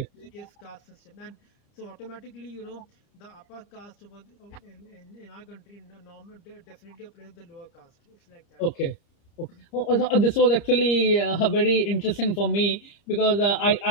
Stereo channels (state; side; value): late; right; 30 ms